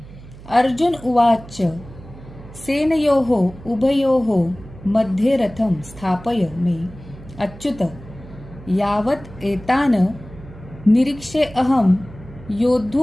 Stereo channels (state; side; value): noise; right; hum, 18 dB below the sound